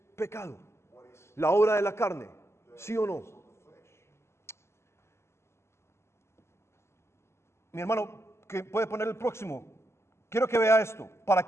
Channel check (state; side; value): late; right; 0.13 ms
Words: pecado, la obra de la carne, ¿sí o no? Mi hermano, que puede poner el próximo. Quiero que vea esto, para